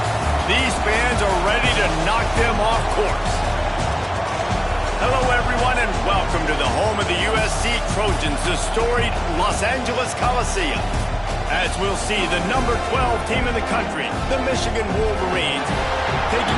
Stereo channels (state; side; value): identical; both; correlation 1.00